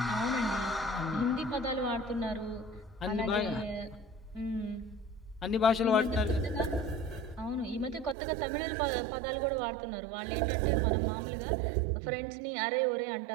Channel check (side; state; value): left; drops out; at 8.2 s